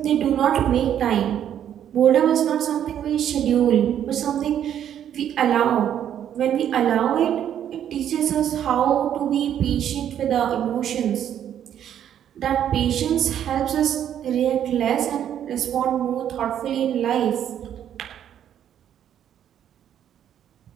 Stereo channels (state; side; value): quieter; left; 10.0 dB